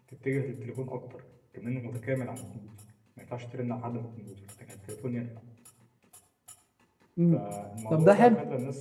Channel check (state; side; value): identical; both; correlation 1.00